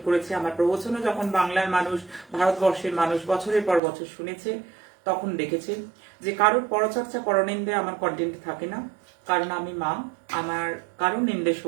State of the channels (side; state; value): left; drops out; at 3.8 s